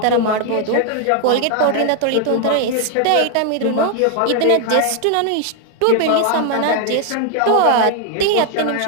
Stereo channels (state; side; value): different; both; correlation 0.00